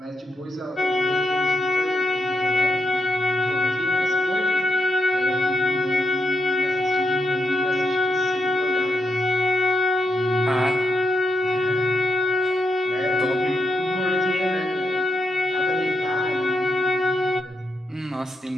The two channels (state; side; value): normal; both; correlation 0.82